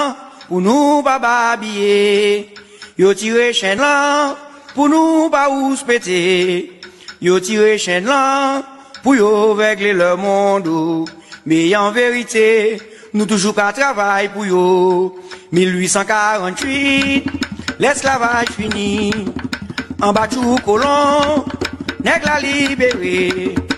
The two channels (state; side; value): identical; both; correlation 1.00